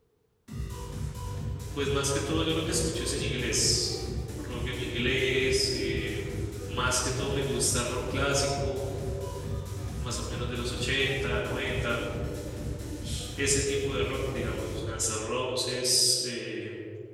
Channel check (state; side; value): identical; both; correlation 1.00